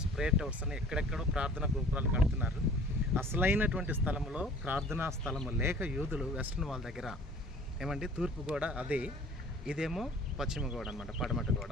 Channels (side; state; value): both; normal; correlation 0.50